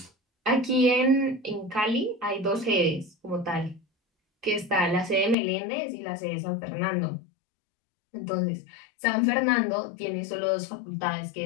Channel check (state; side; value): drops out; right; at 5.4 s